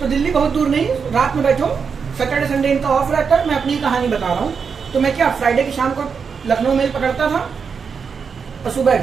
दिल्ली बहुत दूर नहीं, रात में बैठो, सैटरडे संडे इनका ऑफ रहता है। मैं अपनी कहानी बता रहा हूँ। तो मैं क्या फ्राइडे की शाम को लखनऊ मेल पकड़ता था और सुबह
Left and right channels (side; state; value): left; quieter; 6.0 dB